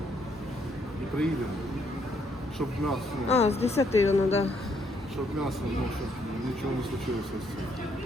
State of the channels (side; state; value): both; normal; correlation 0.71